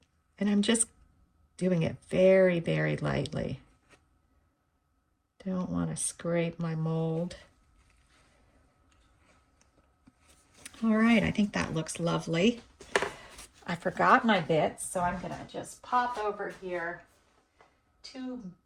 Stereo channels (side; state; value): both; identical; correlation 1.00